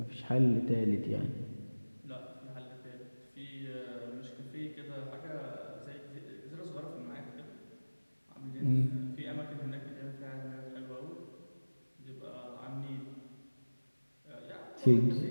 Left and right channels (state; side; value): inverted; both; correlation -1.00